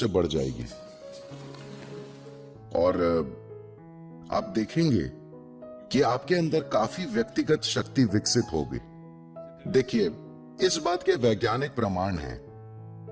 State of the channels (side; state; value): both; identical; correlation 1.00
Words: बढ़ जाएगी और आप देखेंगे कि आपके अंदर काफी व्यक्तिगत शक्ति विकसित होगी। देखिए, इस बात के वैज्ञानिक प्रमाण हैं